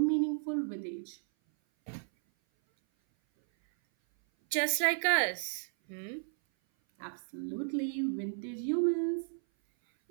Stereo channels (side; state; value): left; silent; 56 dB below the other